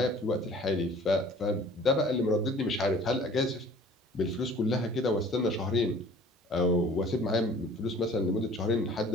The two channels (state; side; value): normal; both; correlation 0.49